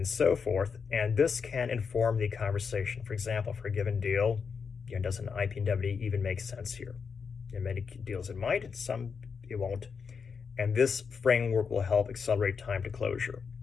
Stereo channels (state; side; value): quieter; right; 5.9 dB